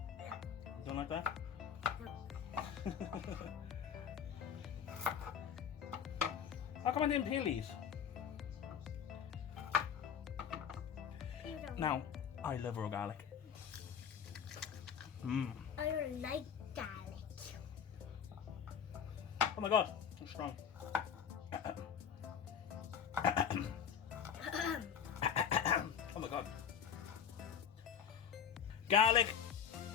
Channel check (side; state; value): right; quieter; 7.9 dB